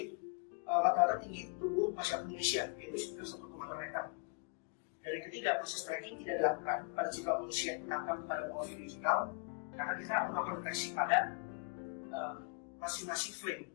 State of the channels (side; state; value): right; quieter; 35.1 dB